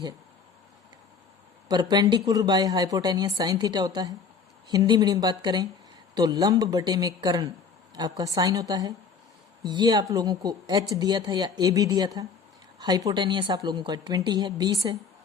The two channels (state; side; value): quieter; right; 5.6 dB